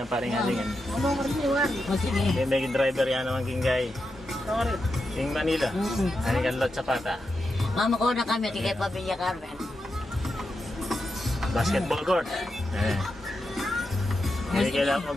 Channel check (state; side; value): normal; both; correlation 0.87